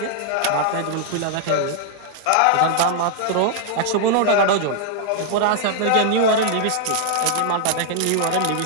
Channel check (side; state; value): both; different; correlation 0.00